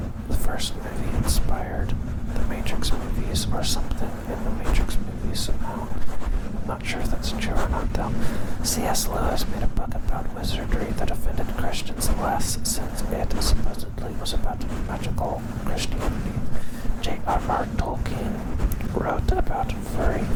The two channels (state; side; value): identical; both; correlation 1.00